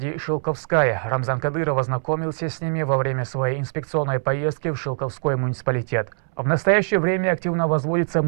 Шилковская. Рамзан Кадыров ознакомился с ними во время своей инспекционной поездки в Шилковской муниципалитет. В настоящее время активно возводится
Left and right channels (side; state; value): left; silent; 64 dB below the other